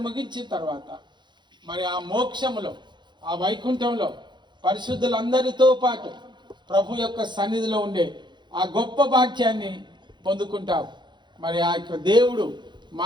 ముగించిన తర్వాత మరి ఆ మోక్షములో, ఆ వైకుంఠంలో పరిశుద్ధులందరితో పాటు ప్రభు యొక్క సన్నిధిలో ఉండే ఆ గొప్ప భాగ్యాన్ని పొందుకుంటావు. మరి ఆ యొక్క దేవుడు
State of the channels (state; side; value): late; left; 0.22 ms